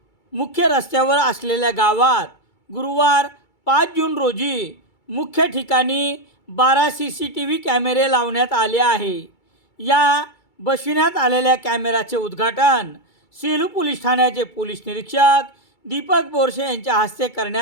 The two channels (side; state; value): right; late; 2.3 ms